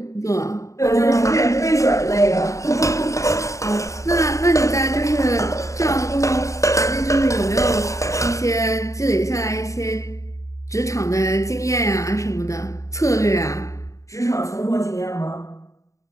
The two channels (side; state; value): right; late; 0.15 ms